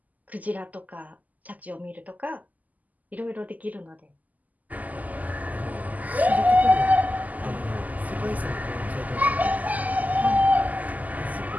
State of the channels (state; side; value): late; left; 0.079 ms